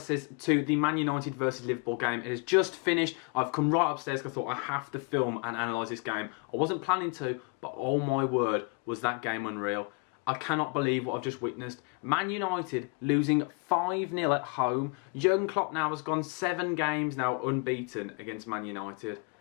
to the Man United versus Liverpool game. It has just finished. I've come right upstairs because I thought I have to film and analyse this game. I wasn't planning to, but oh my word, was that game unreal. I cannot believe what I've just witnessed. Man United losing 5-0 at home. Jurgen Klopp now has gone 7 games now unbeaten against Man United.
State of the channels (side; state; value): right; quieter; 31.8 dB